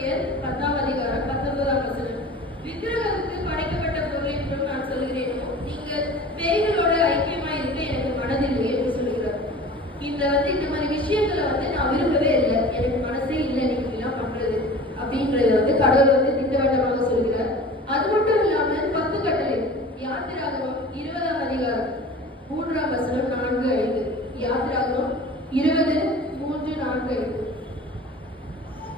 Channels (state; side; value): normal; both; correlation 0.40